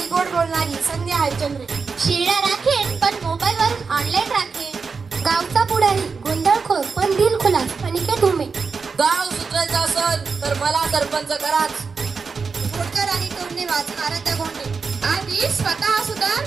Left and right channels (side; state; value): left; quieter; 5.0 dB